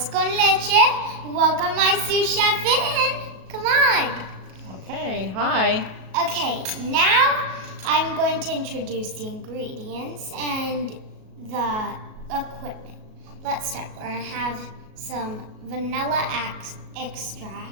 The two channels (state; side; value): late; left; 37 ms